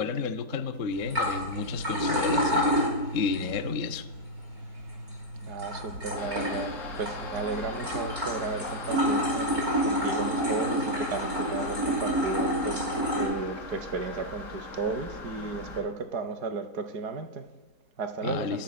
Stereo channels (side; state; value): left; late; 4.4 ms